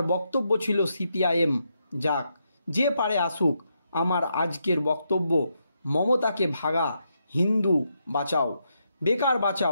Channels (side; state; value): both; inverted; correlation -0.81